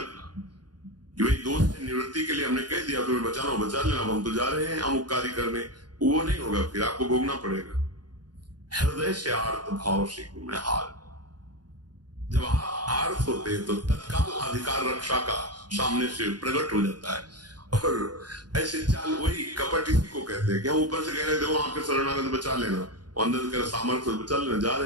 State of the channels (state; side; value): late; left; 0.70 ms